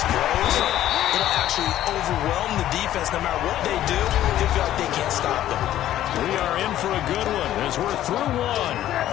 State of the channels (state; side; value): quieter; right; 12.8 dB